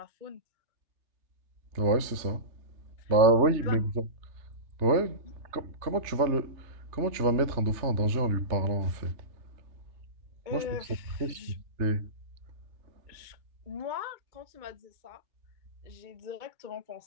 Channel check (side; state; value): left; late; 3.3 ms